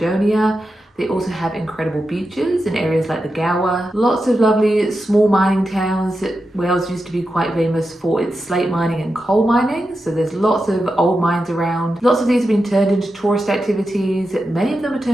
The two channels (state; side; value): normal; both; correlation 0.89